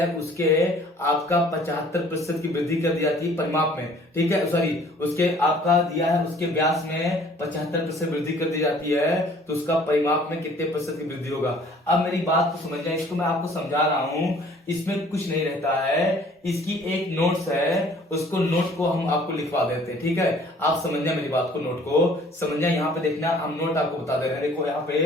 उसके आपका 75% की वृद्धि कर दी जाती है परिमाप में, ठीक है, सॉरी उसके आपका दिया है उसके व्यास में 75% वृद्धि कर दी जाती है तो उसका परिमाप में कितने % की वृद्धि होगा। अब मेरी बात को समझना, इसको मैं आपको समझा रहा हूं, इसमें कुछ नहीं रहता है। इसकी एक नोट्स है, उसको नोट को हम आपको लिखवा देते हैं, ठीक है। आप समझना मेरी बात को, नोट को समझना। यहाँ पे देखना हम नोट आपको बता दे रहे हैं। देखो यहाँ पे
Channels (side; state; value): both; normal; correlation 0.54